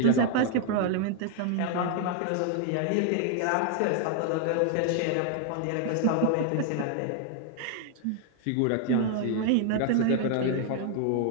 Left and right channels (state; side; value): different; both; correlation 0.00